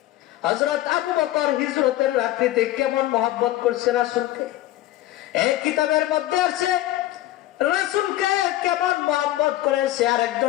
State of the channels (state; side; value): quieter; right; 15.0 dB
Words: হযরত আবু বকর হিজরতের রাত্রিতে কেমন মহব্বত করছে রাসূলকে। এই কিতাবের মধ্যে আছে রাসূলকে কেমন মহব্বত করেছে